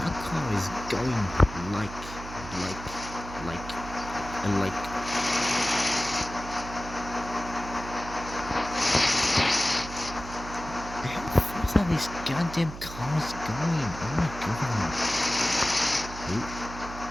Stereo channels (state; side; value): noise; right; hum, 12 dB below the sound